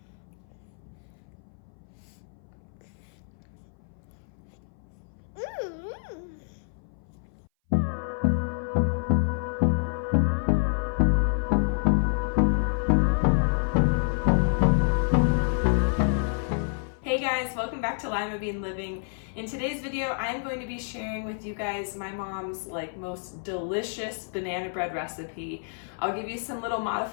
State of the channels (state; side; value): silent; right; 58 dB below the other